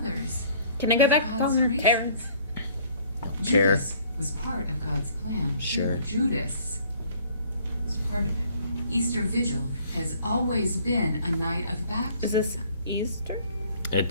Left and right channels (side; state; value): both; inverted; correlation -0.57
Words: Can I go of back God's home, graces? Terrence? Chair. Judas was part of God's plan. too. Sure. Judas was part of it. Easter Vigil has always been a night of Is baptism. this Easter?